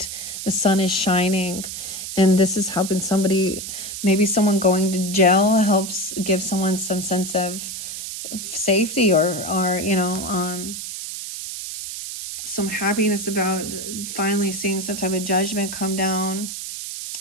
the sun is shining, and this is helping somebody. Maybe someone going to jail helps give someone some sense of safety, or some happiness about finally seeing some type of judgment come down.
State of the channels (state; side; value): noise; right; hiss, 7 dB below the sound